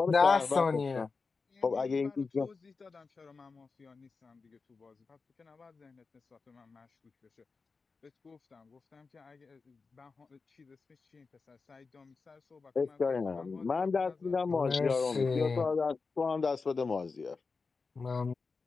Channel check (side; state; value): right; quieter; 4.5 dB